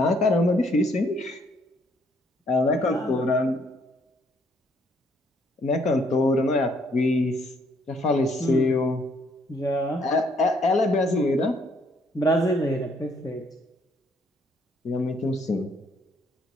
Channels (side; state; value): both; normal; correlation 0.67